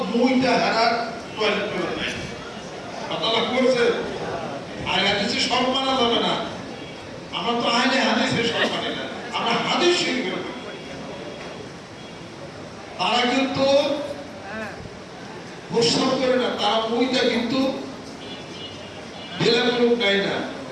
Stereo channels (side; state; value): both; identical; correlation 1.00